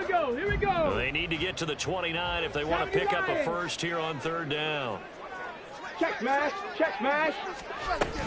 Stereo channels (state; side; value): identical; both; correlation 1.00